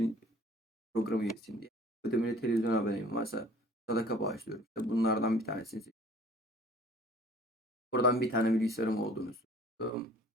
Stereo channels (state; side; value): normal; both; correlation 0.50